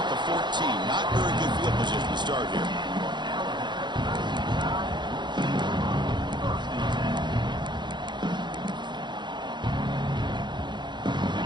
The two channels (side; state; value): left; late; 0.22 ms